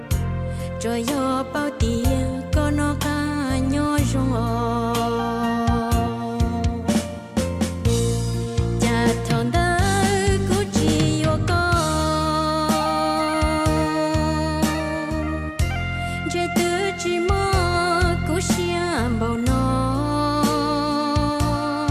rồi do bao tiền có nó cả nhỏ rong cha thằng đó cứ chỉ vô con trái tứ chỉ mơ cứ xiêm bao nó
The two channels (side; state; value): both; identical; correlation 1.00